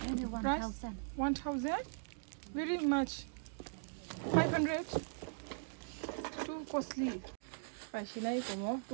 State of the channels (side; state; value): left; silent; digital silence